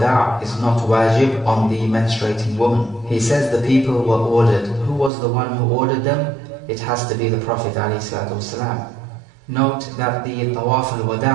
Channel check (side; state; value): left; drops out; at 5.1 s